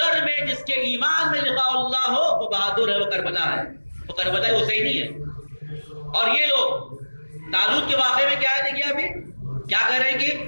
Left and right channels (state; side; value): inverted; both; correlation -1.00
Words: میں، جس کے ایمان میں لقاء اللہ ہو، وہ بہادر ہے، وہ کربلا ہے، وہ کربلا حسینی ہے۔ اور یہ لوگ طالوت کے واقعے میں کیا ہے؟ دیکھیے ابھی کیا کہہ رہے ہیں کہ